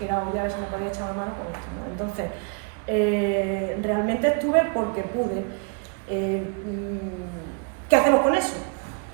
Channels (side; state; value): left; quieter; 38.5 dB